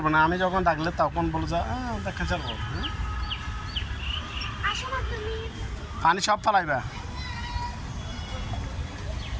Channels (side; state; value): both; identical; correlation 1.00